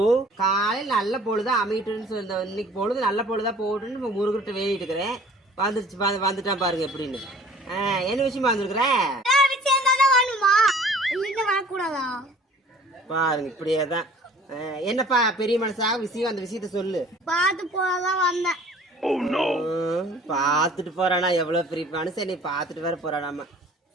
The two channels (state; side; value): normal; both; correlation 0.50